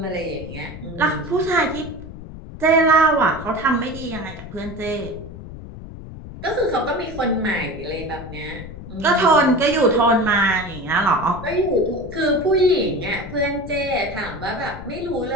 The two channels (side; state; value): left; noise; rumble, 13 dB below the sound